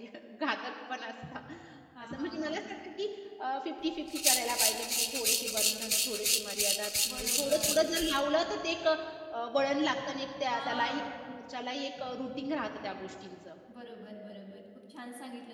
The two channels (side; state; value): both; identical; correlation 1.00